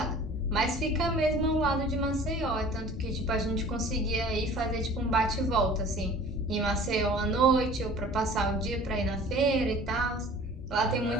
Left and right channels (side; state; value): both; normal; correlation 0.46